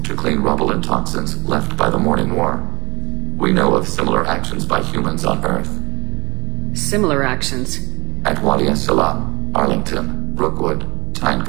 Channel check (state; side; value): quieter; left; 24.7 dB